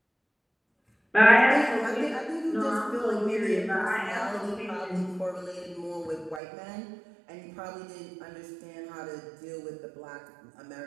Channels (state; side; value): drops out; left; at 6.4 s